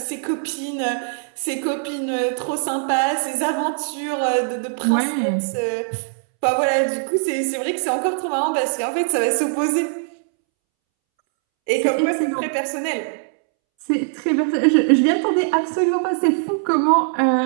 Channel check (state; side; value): silent; left; 65 dB below the other